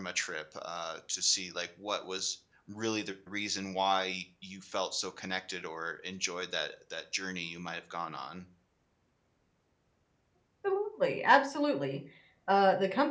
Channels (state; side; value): identical; both; correlation 1.00